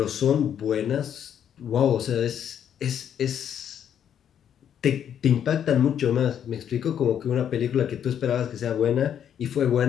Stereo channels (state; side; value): quieter; right; 9.1 dB